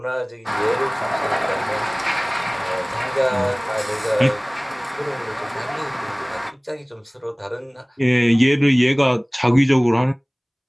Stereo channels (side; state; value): both; identical; correlation 1.00